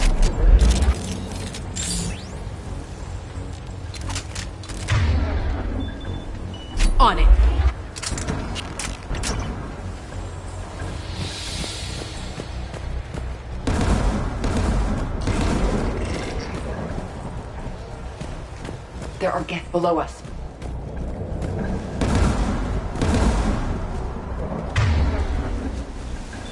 On it. There are Geth below us.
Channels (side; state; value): both; identical; correlation 1.00